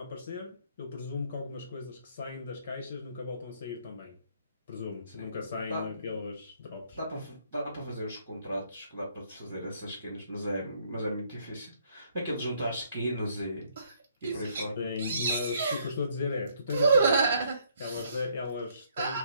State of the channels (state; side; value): inverted; both; correlation -0.67